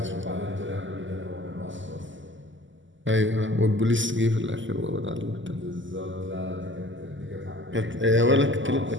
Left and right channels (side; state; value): left; late; 0.55 ms